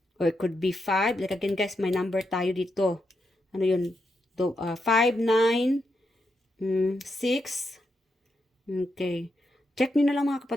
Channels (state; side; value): normal; both; correlation 0.83